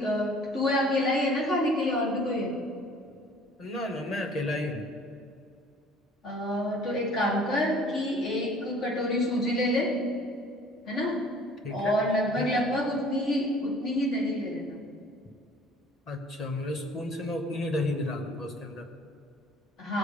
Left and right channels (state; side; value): normal; both; correlation 0.52